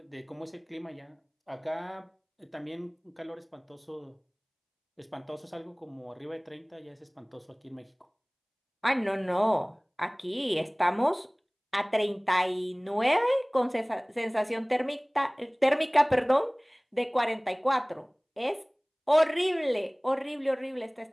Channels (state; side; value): identical; both; correlation 1.00